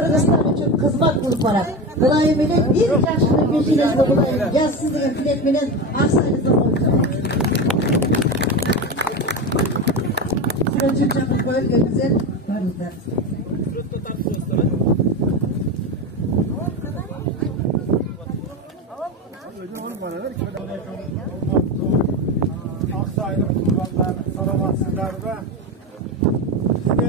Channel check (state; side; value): normal; both; correlation 0.20